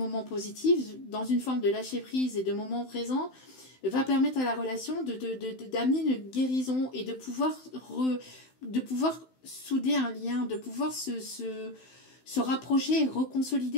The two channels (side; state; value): right; late; 16 ms